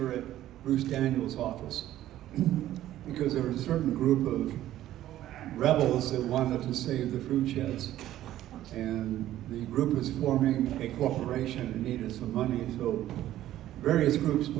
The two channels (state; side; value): quieter; left; 13.4 dB